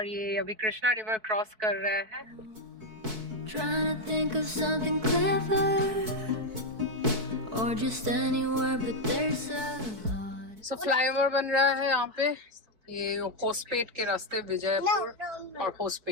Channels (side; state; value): left; late; 4.6 ms